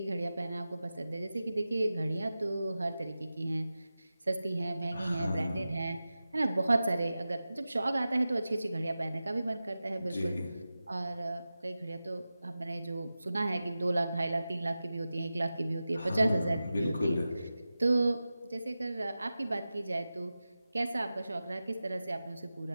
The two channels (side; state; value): both; inverted; correlation -0.94